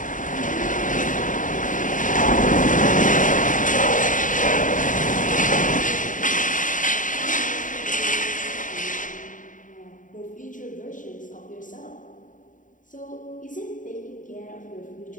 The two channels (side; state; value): right; late; 0.38 ms